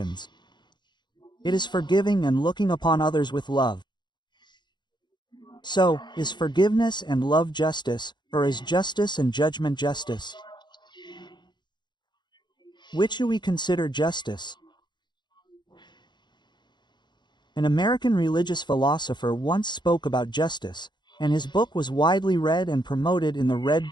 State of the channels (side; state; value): right; late; 0.21 ms